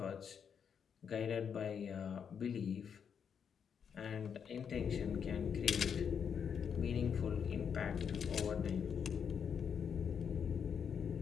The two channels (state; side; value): quieter; right; 7.2 dB